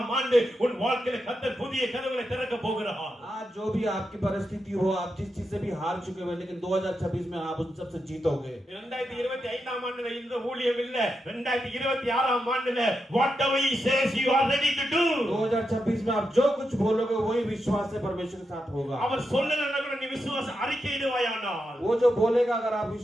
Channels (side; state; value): both; normal; correlation 0.86